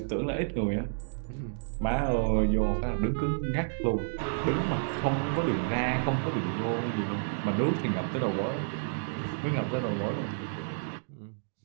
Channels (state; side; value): silent; left; digital silence